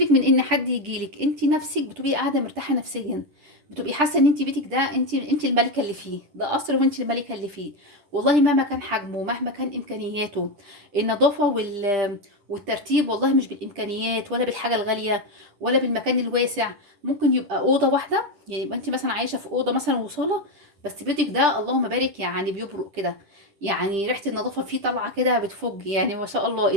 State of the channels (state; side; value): late; left; 10 ms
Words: من ان حد يجيلك، انت نفسك بتبقي قاعده مرتاحه نفسيا، بتبقي حاسه ان انت بيتك ده انت الملكه اللي فيه، ده قصر وانت الملكه اللي فيه. والله مهما كان حجمه، مهما كان امكانياته، النظافه والترتيب والله مش بالامكانيات ولا بالحاجه الغاليه ولا بالمكان الواسع. ممكن يبقى اوضه واحده، يعني يبقى انت مثلا عايشه في اوضه مثلا وصاله، بس بيتك ده اللهم بارك يعني بيبرق كده، يعني ريحه النظافه فيه طالعه كده بتفج، يعني ما شاء الله،